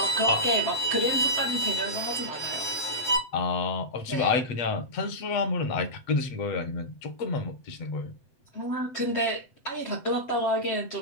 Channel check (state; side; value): late; right; 7.9 ms